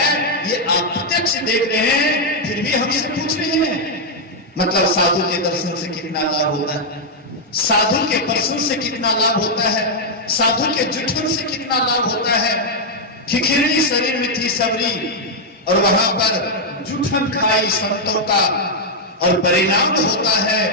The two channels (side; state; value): both; normal; correlation -0.02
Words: ये आप प्रत्यक्ष देख रहे हैं, फिर भी हमसे पूछ रहे हैं मतलब साधु के दर्शन से कितना लाभ होता है, साधु के दर्शन से कितना लाभ होता है, साधु के जुठन से कितना लाभ होता है। खिखिरनी शरीर में थी सबरी और वहां पर जुठन खाई संतों का और परिणाम होता है